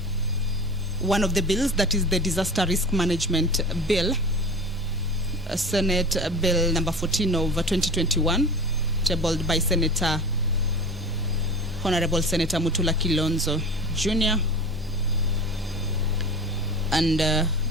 One of the bills, that is the Disaster Risk Management Bill, Senate Bill number 14 of 2021, tabled by Honorable Senator Mutula Kilonzo Jr. and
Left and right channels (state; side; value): normal; both; correlation 0.35